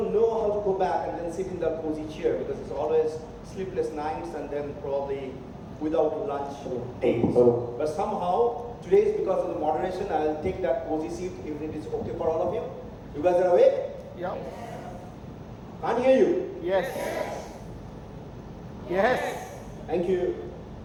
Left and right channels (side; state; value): both; identical; correlation 1.00